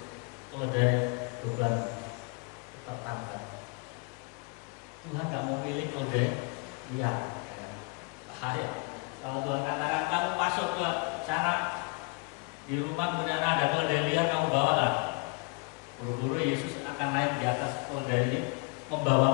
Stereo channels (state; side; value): quieter; right; 31.5 dB